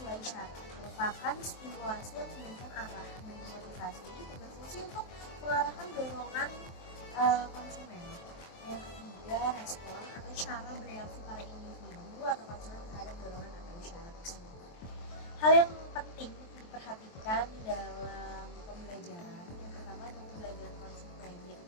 isyarat merupakan stimulasi yang memberikan arah, dan motivasi berfungsi untuk mengarahkan dorongan konsumen. Nah, yang ketiga, respon atau cara bereaksi para individu atau konsumen terhadap dorongan atau isyarat tersebut. Hal yang penting diperhatikan dalam pembelajaran yang pertama adalah pembelajaran konsumen,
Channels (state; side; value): late; right; 23 ms